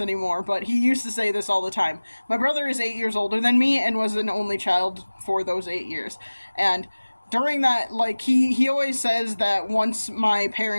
anymore, but he used to say this all the time. My brother is 8 years older than me and was an only child for those 8 years. And during that, he always says that once my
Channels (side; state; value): both; inverted; correlation -1.00